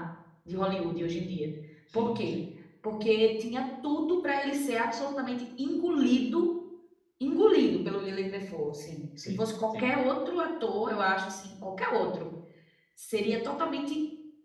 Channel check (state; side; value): identical; both; correlation 1.00